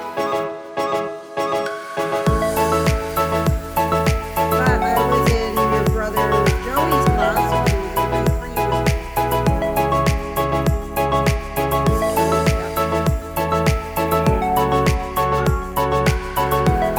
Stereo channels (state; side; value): identical; both; correlation 1.00